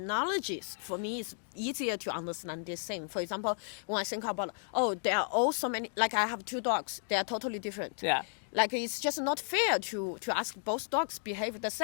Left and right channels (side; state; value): right; silent; 55 dB below the other